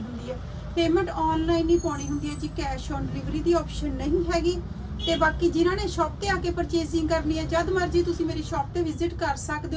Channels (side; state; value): both; identical; correlation 1.00